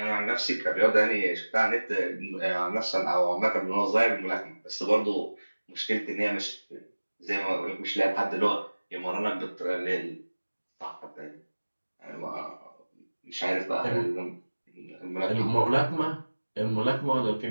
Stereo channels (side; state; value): both; inverted; correlation -1.00